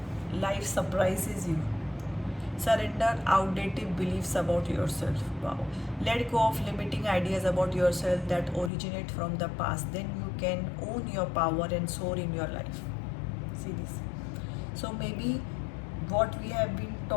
life surprises you. Surrender outdated beliefs about yourself. Wow. Let go of limiting ideas about yourself that originate from the past. Then you can own your power and soar in your life. See this. So maybe what we have been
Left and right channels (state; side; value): drops out; right; at 8.7 s